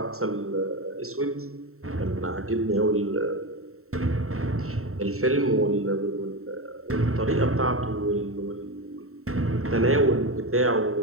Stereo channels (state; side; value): late; left; 0.63 ms